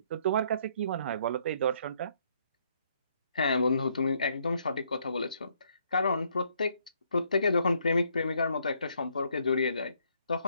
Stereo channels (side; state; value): both; inverted; correlation -0.69